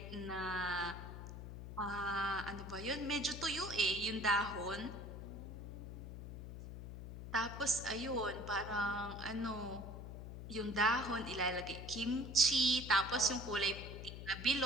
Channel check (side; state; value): left; noise; hum, 9 dB below the sound